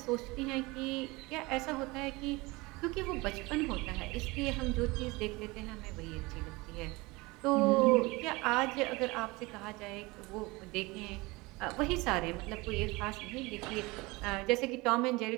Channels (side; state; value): left; quieter; 23.3 dB